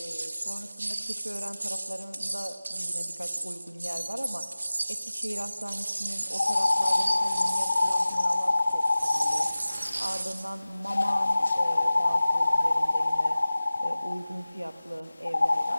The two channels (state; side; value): inverted; both; correlation -0.97